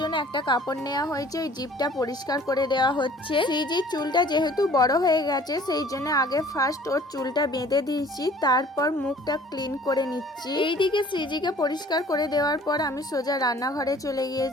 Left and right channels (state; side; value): normal; both; correlation 0.52